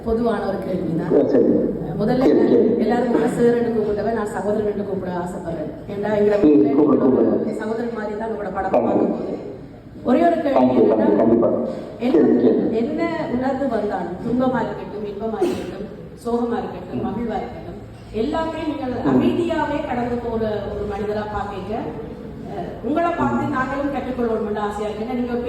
பொதுவான ஒரு கேள்வி தான். முதல்ல எல்லாரும் சார் கூப்பிட்டவன் நான் சகோதரன் கூப்பிட ஆசைப்படுறேன். ஏன்னா எங்களை சகோதரன் மாதிரி தான் உங்களோட படம் பார்க்கும்போது ஒரே ஒரு கேள்வி என்ன உணர்வு வந்தாலும், துன்பமா இருக்கட்டும், இன்பமா இருக்கட்டும், சோகமா இருக்கட்டும், மகிழ்வா இருக்கட்டும், எல்லாமே நீங்கள் அமைதியாவே கடந்து போற ஒரு மனிதரா பாக்க உங்களை பார்த்து நாங்களும் கற்றுக்கொள்ளணும் ஆசையா இருக்கு. ஏன்னா நீங்க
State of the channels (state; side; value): identical; both; correlation 1.00